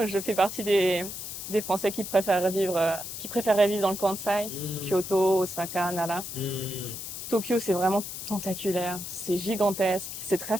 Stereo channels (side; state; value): left; noise; hiss, 8 dB below the sound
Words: Je fais partie des Français qui préféraient vivre dans le Kansai, Hmm, Kyoto, Osaka, Nara. hmm, Tokyo, c'est vraiment tentaculaire. C'est gigantesque. C'est très